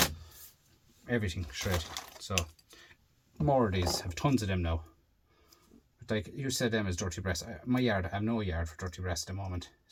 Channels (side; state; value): both; identical; correlation 1.00